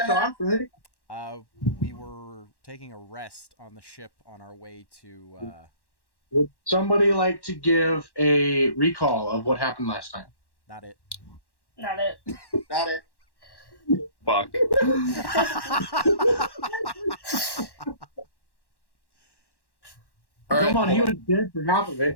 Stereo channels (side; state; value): right; late; 1.1 ms